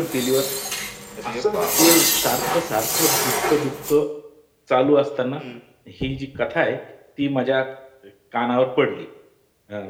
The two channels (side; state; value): both; identical; correlation 1.00